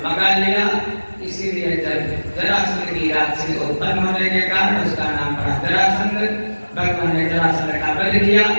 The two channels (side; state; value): both; inverted; correlation -1.00